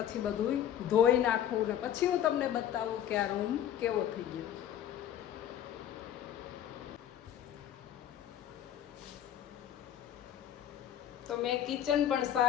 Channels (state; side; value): quieter; right; 10.6 dB